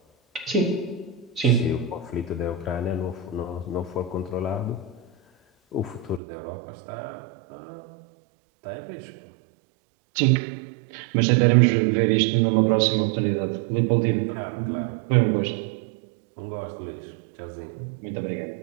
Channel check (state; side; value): drops out; left; at 6.2 s